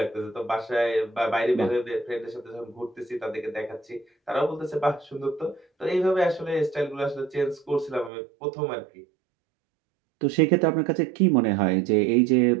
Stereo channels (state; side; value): drops out; left; at 8.1 s